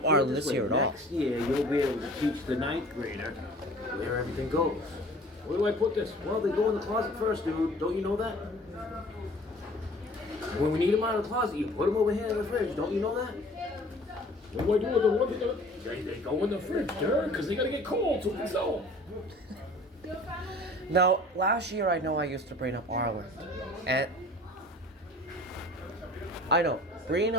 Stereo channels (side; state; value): both; normal; correlation 0.48